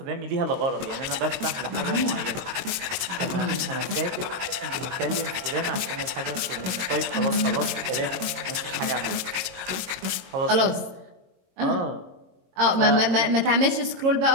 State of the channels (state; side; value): late; left; 22 ms